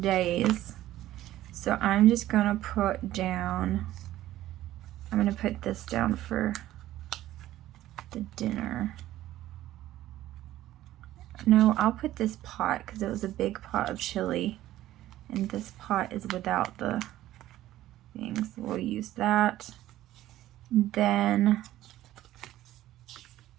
days. So I'm just gonna put this down for the dinner. No, I'll put this pot because it was a big pot of chili, and this pot is without the things. So we'll use that. Then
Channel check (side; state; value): left; quieter; 14.4 dB